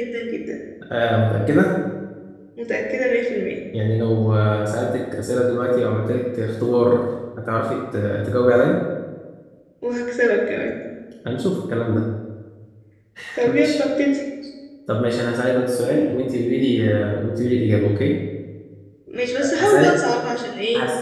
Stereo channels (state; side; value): identical; both; correlation 1.00